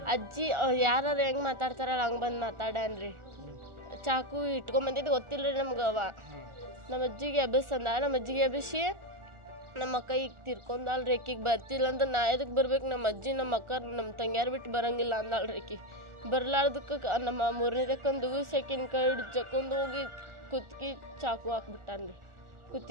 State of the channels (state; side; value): late; left; 1.4 ms